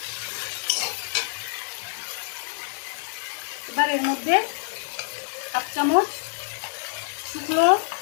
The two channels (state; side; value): silent; right; 61 dB below the other